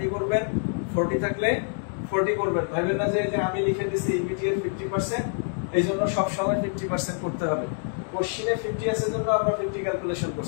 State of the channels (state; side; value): silent; right; 61 dB below the other